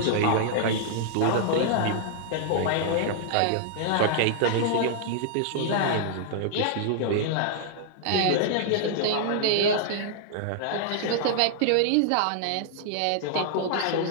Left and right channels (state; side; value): different; both; correlation -0.01